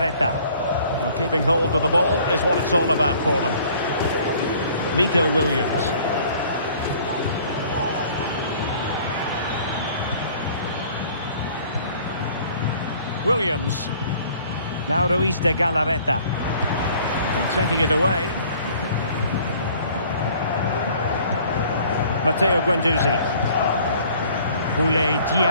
Well, keeping hold of the ball is what it's all about for them. Nico Williams. Williams. Now Ruiz de Galarreta. And taking it away. Matteo Guendouzi. Boulay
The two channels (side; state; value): both; inverted; correlation -0.54